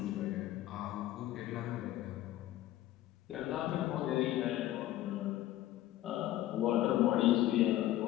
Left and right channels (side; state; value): right; quieter; 14.2 dB